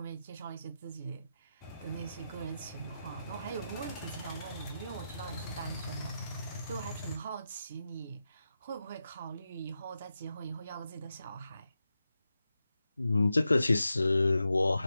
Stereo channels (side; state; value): both; inverted; correlation -0.89